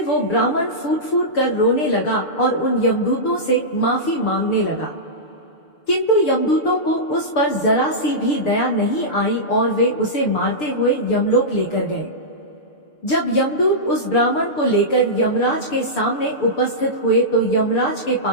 वो ब्राह्मण फूट फूट कर रोने लगा और उन यमदूतों से माफी मांगने लगा, किंतु यमदूतों को उस पर जरा सी भी दया नहीं आई और वे उसे मारते हुए यमलोक लेकर गए। जब यमदूत उस ब्राह्मण को लेकर यमराज के सामने उपस्थित हुए तो यमराज के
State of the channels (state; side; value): late; right; 6.7 ms